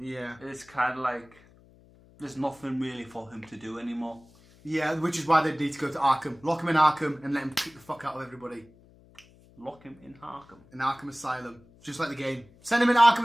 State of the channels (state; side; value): noise; left; hum, 26 dB below the sound